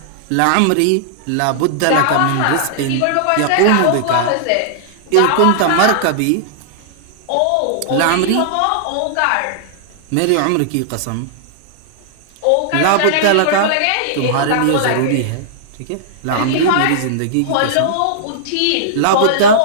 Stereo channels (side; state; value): both; different; correlation -0.01